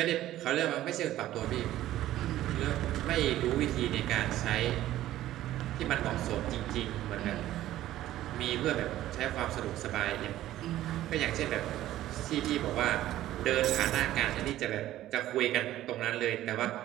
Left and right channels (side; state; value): left; quieter; 14.0 dB